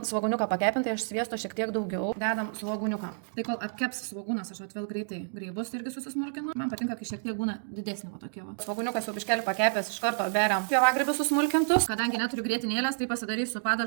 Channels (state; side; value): silent; left; digital silence